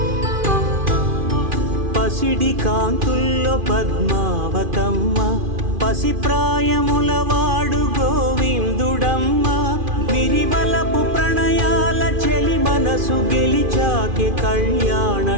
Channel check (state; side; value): late; left; 2.5 ms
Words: పసిడి కాంతుల్లో పద్మావతమ్మ పసిప్రాయముల వాడు గోవిందుడమ్మ విరివలపు ప్రణయాల చెలి మనసు గెలిచాకె కళ్యాణ